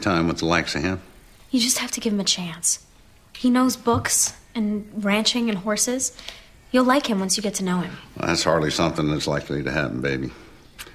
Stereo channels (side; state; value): both; identical; correlation 1.00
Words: with the likes of him? You just have to give him a chance. He knows books and ranching and horses. You'll like him once you get to know him. Well, that's hardly something that's likely to happen, baby.